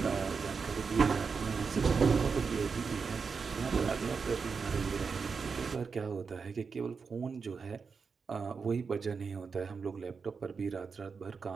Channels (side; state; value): left; quieter; 5.3 dB